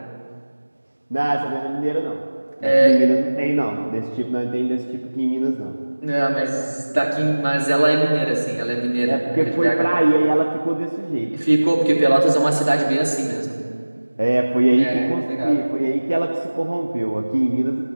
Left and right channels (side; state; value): both; inverted; correlation -1.00